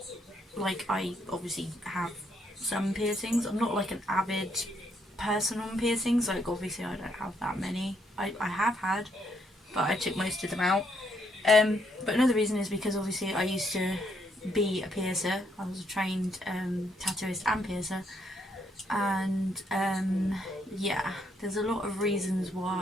like, I obviously have some piercings. I'm not like an avid person on piercings. Like, obviously, I don't have that many. I have had, but I took most of them out. But another reason is because obviously I used to be a piercer. I was a trained tattooist and piercer, and yeah, there's a lot of reasons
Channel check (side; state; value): both; normal; correlation 0.73